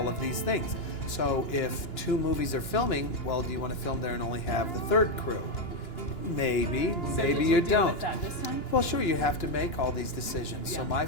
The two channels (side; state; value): right; late; 2.9 ms